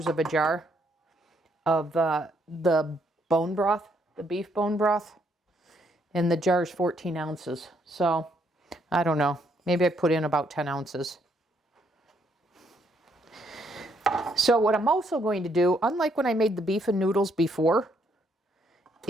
of a jar of the bone broth, the beef bone broth, and the jar is 14 ounces. So I don't know. Maybe I put in about 10 ounces. So what I'm also going to do, unlike when I made the beef and noodles before,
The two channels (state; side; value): normal; both; correlation 0.72